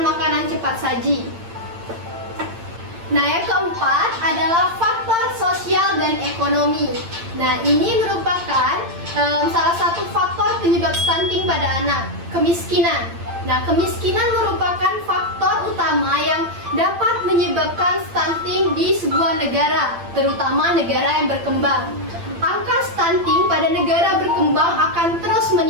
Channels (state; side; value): late; left; 8.8 ms